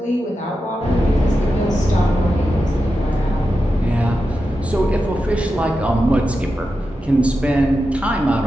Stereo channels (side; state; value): both; normal; correlation 0.90